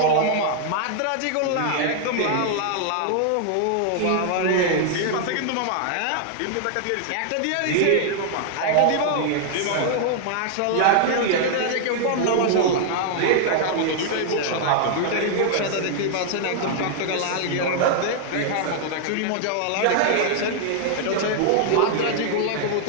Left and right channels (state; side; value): different; both; correlation 0.00